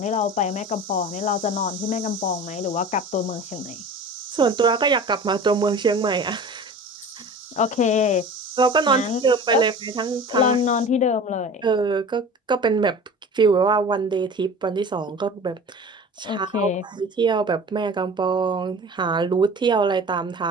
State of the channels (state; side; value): normal; both; correlation 0.38